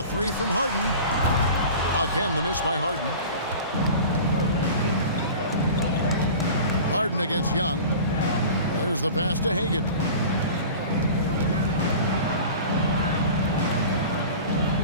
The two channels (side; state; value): both; inverted; correlation -0.38